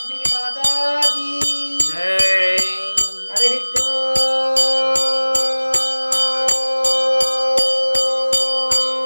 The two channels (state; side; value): inverted; both; correlation -1.00